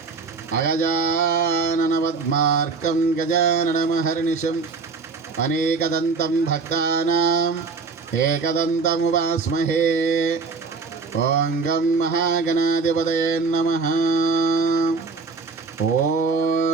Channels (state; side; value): quieter; left; 4.5 dB